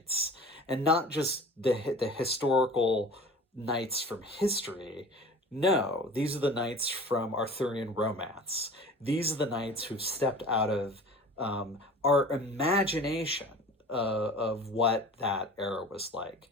and not just the historical knights from history. No, these are the knights from Arthurian romance. These are the knights who've stepped out of our imagination of what that era was like.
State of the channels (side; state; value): both; normal; correlation 0.41